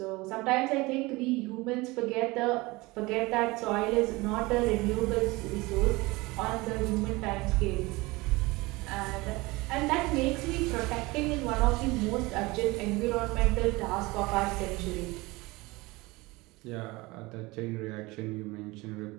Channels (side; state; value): left; quieter; 22.5 dB